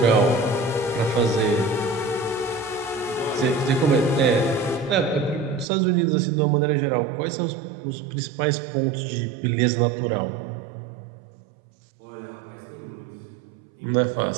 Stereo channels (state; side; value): drops out; left; at 5.7 s